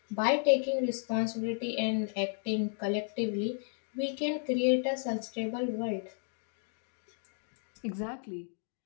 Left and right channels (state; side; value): silent; right; 55 dB below the other